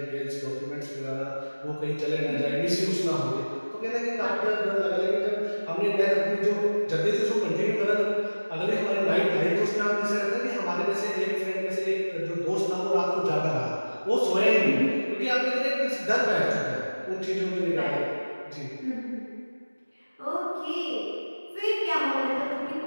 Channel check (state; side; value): inverted; both; correlation -1.00